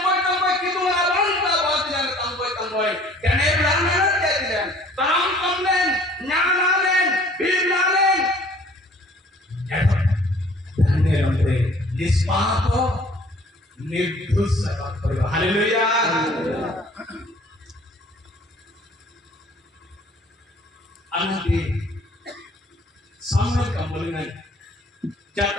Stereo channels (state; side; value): normal; both; correlation 0.54